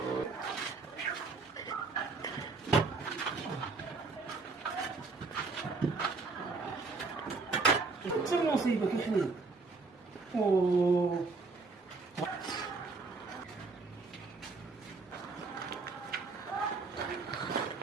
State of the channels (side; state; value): left; quieter; 4.1 dB